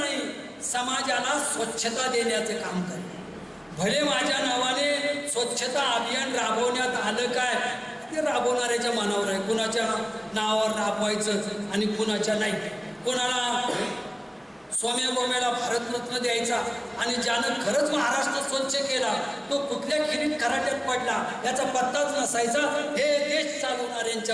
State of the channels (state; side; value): identical; both; correlation 1.00